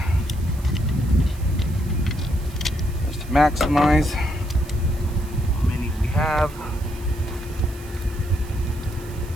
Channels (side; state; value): right; noise; hiss, 21 dB below the sound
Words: just to maximize how many we have.